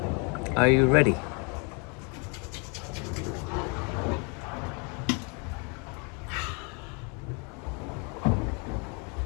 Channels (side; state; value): right; quieter; 34.0 dB